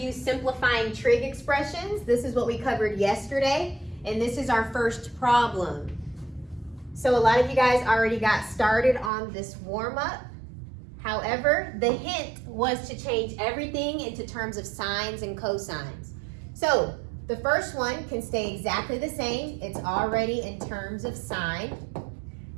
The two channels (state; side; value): drops out; left; at 9.1 s